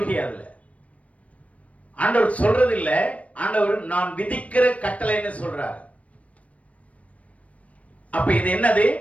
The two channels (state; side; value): late; right; 0.066 ms